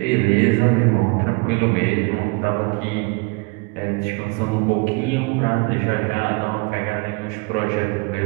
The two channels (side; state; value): left; quieter; 29.1 dB